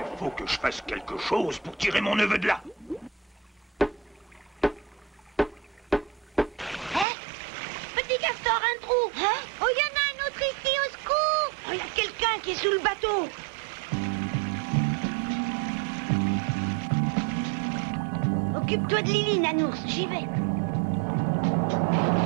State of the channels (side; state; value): left; drops out; at 7.1 s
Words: faut que je fasse quelque chose pour tirer mon neveu de là. Petit castor, un trou. Hein? Oh, il y en a un autre ici, au secours. Oh, il y a quelqu'un qui est sous le bateau. Occupe-toi de Lily, Nanours, j'y vais.